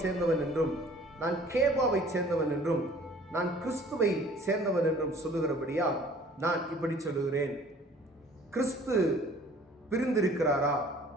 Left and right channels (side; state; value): both; normal; correlation 0.52